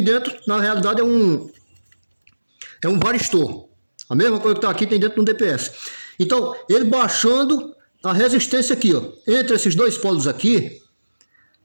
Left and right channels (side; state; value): both; inverted; correlation -1.00